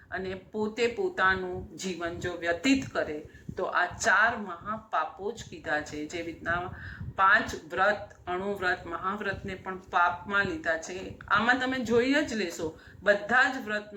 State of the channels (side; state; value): both; identical; correlation 1.00